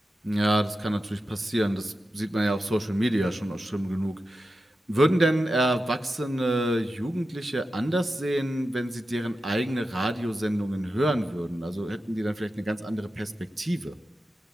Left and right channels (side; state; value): both; normal; correlation 0.91